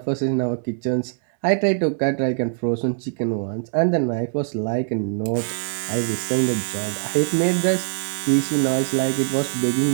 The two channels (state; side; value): silent; left; digital silence